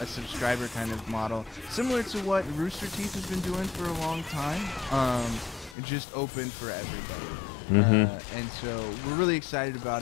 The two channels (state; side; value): drops out; right; at 5.8 s